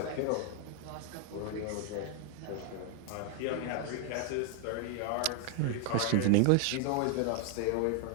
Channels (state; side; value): different; both; correlation 0.00